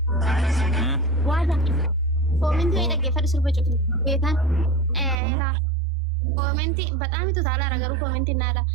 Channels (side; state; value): left; drops out; at 5.2 s